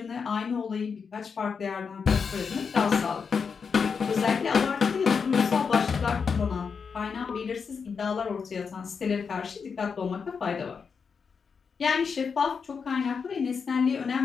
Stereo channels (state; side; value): quieter; right; 5.8 dB